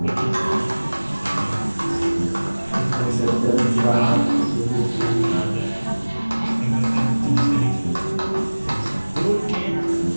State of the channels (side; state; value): both; inverted; correlation -1.00